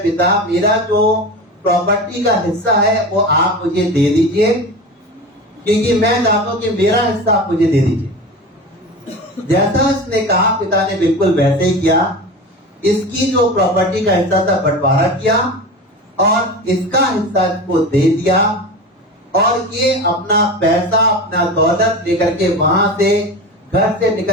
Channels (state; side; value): normal; both; correlation 0.29